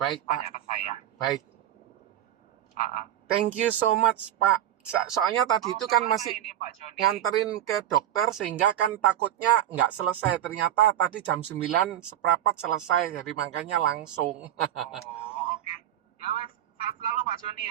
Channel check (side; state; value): left; quieter; 11.5 dB